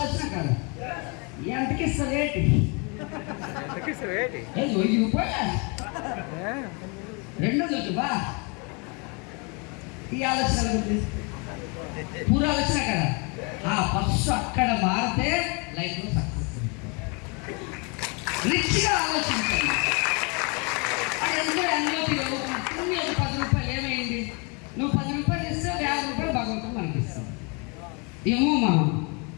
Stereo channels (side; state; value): right; quieter; 32.4 dB